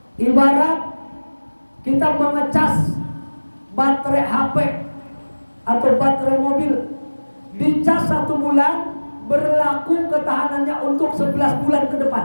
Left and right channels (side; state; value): both; inverted; correlation -1.00